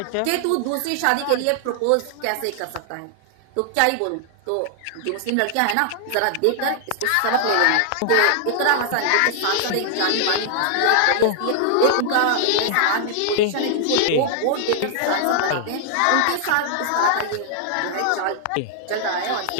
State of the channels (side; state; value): both; different; correlation 0.00